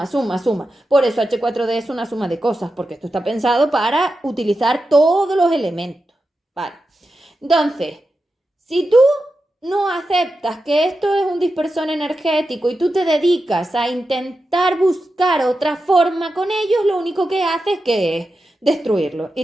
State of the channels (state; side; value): normal; both; correlation 0.90